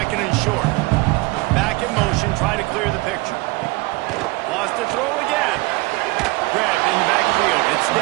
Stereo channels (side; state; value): left; quieter; 22.5 dB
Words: and short. Back in motion, try to clear the picture. Wants to throw again. Grabbed in the backfield, it's